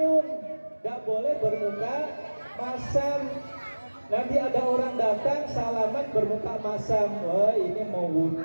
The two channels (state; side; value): inverted; both; correlation -1.00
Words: Gak boleh bermuka masam. Nanti ada orang datang salaman bermuka masam. Wah ini mau